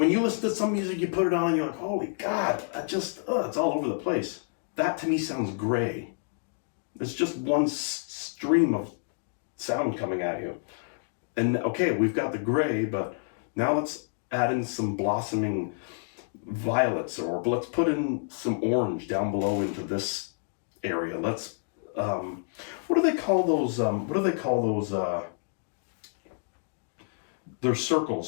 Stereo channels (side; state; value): right; silent; digital silence